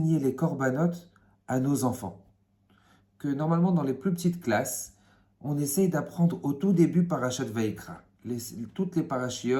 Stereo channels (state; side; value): identical; both; correlation 1.00